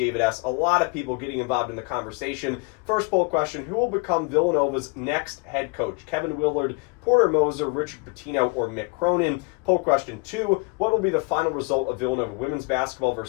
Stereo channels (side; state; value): right; quieter; 31.1 dB